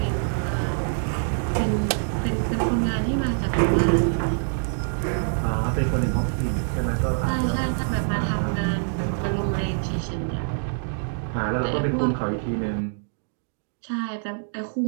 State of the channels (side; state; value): left; silent; digital silence